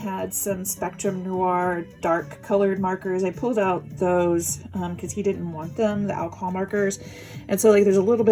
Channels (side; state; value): both; identical; correlation 1.00